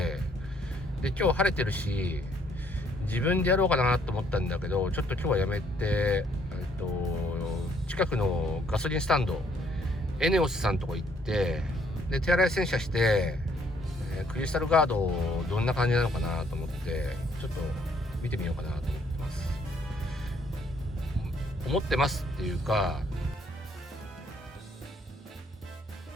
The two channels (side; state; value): both; normal; correlation 0.66